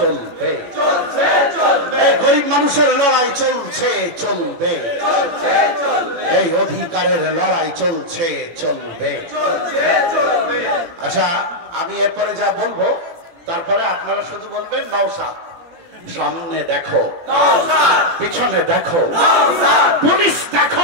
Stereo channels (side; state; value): left; late; 18 ms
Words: এই গরিব মানুষের লড়াই চলছে চলবে, এই অধিকারের লড়াই চলছে চলবে। আচ্ছা, আমি এরপরে যা বলবো তারপরে আপনারা শুধু বলবেন নওশাদ। সামনে দেখো, পিছনে দেখো, পুলিশ